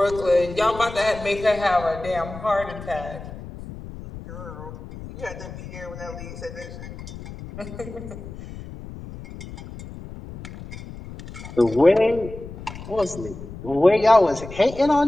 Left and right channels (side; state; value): left; noise; rumble, 13 dB below the sound